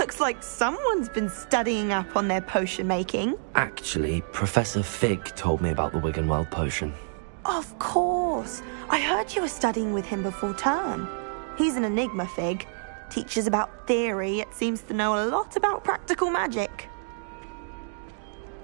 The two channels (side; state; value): left; silent; digital silence